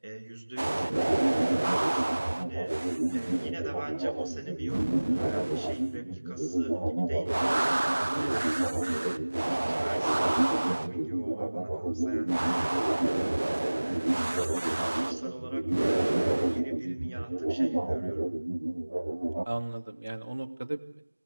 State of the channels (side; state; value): both; inverted; correlation -1.00